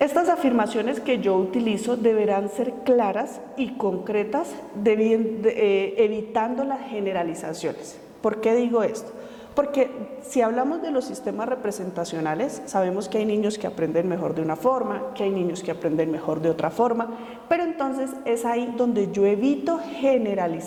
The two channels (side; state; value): both; identical; correlation 1.00